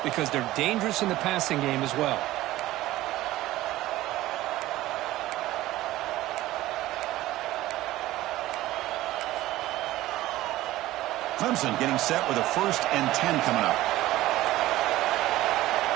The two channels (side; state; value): left; quieter; 16.2 dB